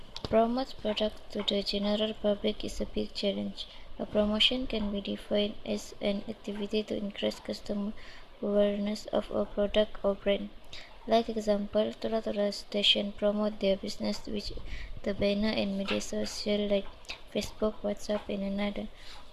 product to the general public is a big challenge. A promotion can be defined as an activity to increase customer awareness of a product or brand. Like example, Tora Tora station promote their business with the banner and media social like Facebook, WhatsApp, and another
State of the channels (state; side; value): identical; both; correlation 1.00